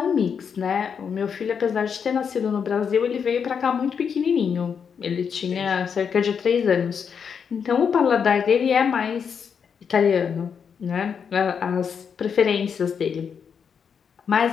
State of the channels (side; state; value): right; quieter; 6.8 dB